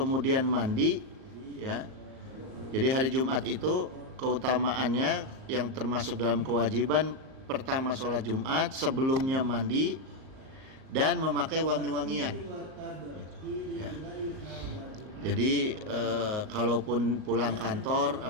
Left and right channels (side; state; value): left; late; 38 ms